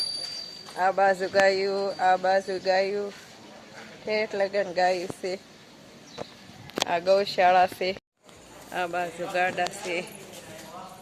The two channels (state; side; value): identical; both; correlation 1.00